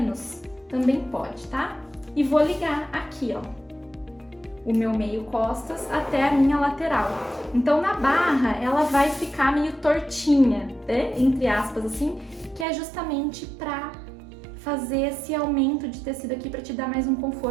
também pode, tá? E vou ligar aqui, ó, o meu meio costas até a minha lateral. Então na barra ela vai ficar meio tortinha, né? Entre aspas assim, que é justamente pra fazer esse aumento de tecido aqui pra te dar mais um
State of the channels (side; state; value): left; drops out; at 12.7 s